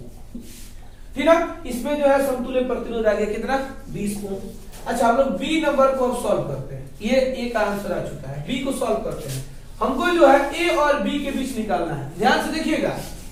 ठीक ना। इसमें जो है समतुल्य प्रतिरोध आ गया कितना, 20 ओम। अच्छा, हम लोग बी नंबर को अब सॉल्व करते हैं, ये ए का आंसर आ चुका है, बी को सॉल्व करते हैं। हमको जो है ए और बी के बीच निकालना है, ध्यान से देखिएगा।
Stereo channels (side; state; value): both; identical; correlation 1.00